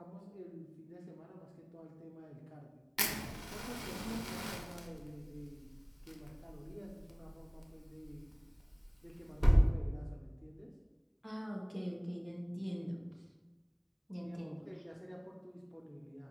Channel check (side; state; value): both; identical; correlation 1.00